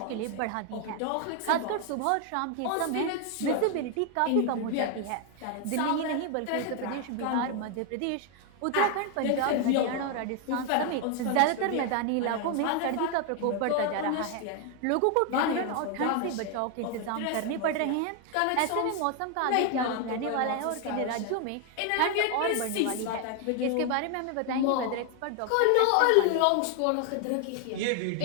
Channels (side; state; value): both; different; correlation 0.01